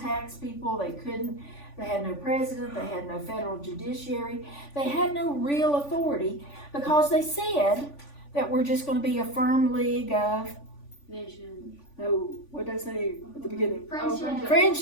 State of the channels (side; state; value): right; late; 3.5 ms